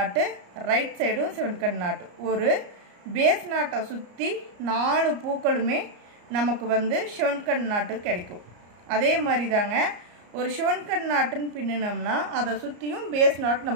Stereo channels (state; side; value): late; left; 34 ms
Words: ரைட் சைடும் சிவன் கண் நாட்டு. ஒரு பேஸ் நாட்டை சுற்றி 4 பூக்களுமே நமக்கு வந்து சிவன் கண் நாட்டு கிடைக்கும். அதே மாதிரி தாங்க ஒரு சிவன் கண் நாட்டுன்னு பின்னினோம்னா அதை சுற்றியும் பேஸ் நாட்